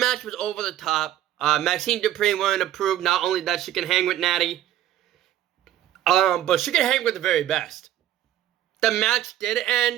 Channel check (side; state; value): left; quieter; 12.5 dB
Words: was over the top. Maxine Dupri wanted to prove not only that she can hang with Natty, but she can hang with the very best. The match did